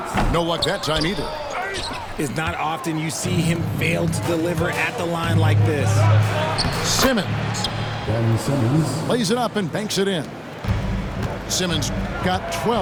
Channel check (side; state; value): both; identical; correlation 1.00